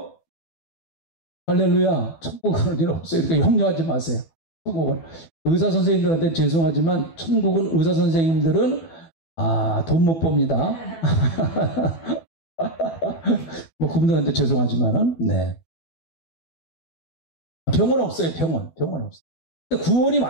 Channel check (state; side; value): late; right; 12 ms